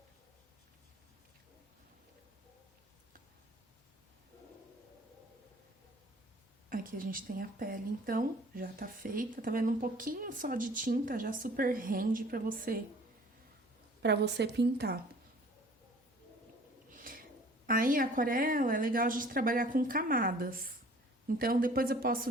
Aqui a gente tem a pele, então, já tá feita. Tá vendo? Um pouquinho só de tinta já super rende pra você pintar. Aí, a aquarela é legal a gente trabalhar com camadas. Então, depois eu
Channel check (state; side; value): normal; both; correlation 0.51